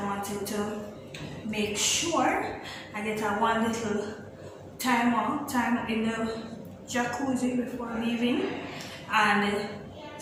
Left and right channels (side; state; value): both; identical; correlation 1.00